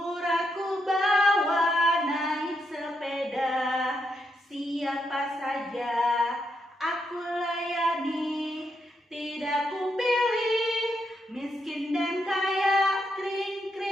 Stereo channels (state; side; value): normal; both; correlation 0.80